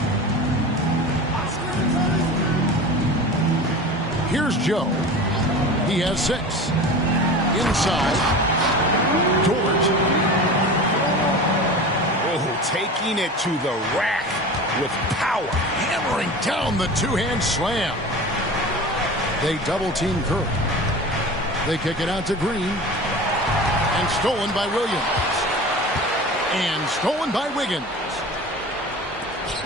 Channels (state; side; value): normal; both; correlation 0.34